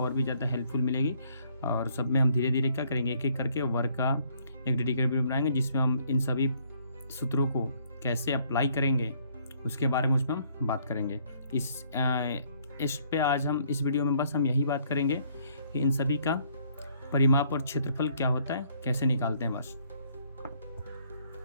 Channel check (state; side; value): inverted; both; correlation -0.64